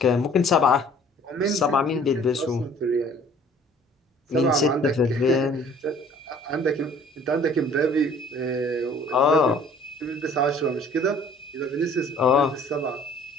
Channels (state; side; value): normal; both; correlation 0.53